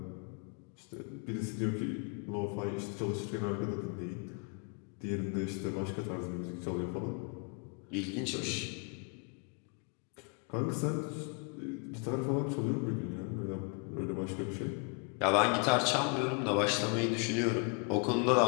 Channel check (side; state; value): right; quieter; 37.2 dB